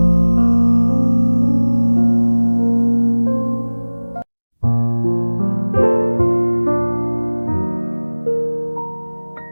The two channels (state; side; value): inverted; both; correlation -1.00